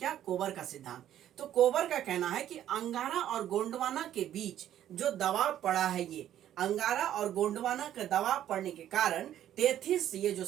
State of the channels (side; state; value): left; quieter; 11.5 dB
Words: कोबर का सिद्धांत। तो कोबर का कहना है कि अंगारा और गोंडवाना के बीच जो दबाव पड़ा है, ये अंगारा और गोंडवाना का दबाव पड़ने के कारण टेथिस, ये जो